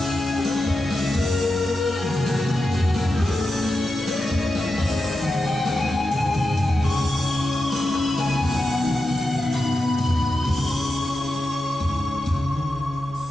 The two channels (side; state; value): right; noise; rumble, 25 dB below the sound